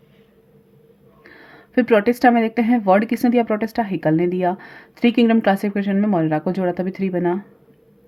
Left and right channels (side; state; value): both; identical; correlation 1.00